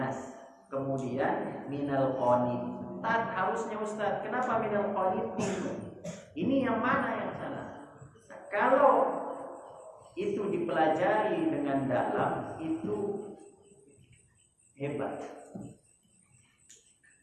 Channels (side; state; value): both; identical; correlation 1.00